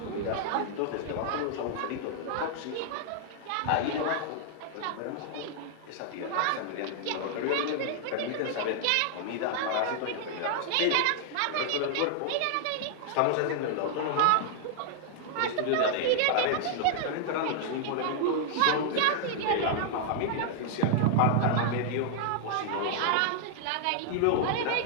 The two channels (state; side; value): different; both; correlation 0.00